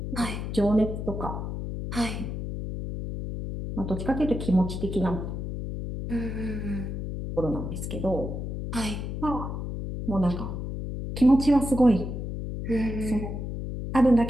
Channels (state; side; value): noise; left; hum, 5 dB below the sound